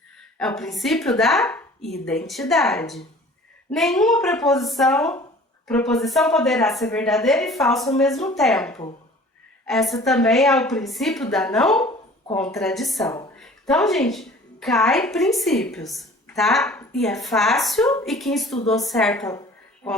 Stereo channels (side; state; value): both; normal; correlation 0.47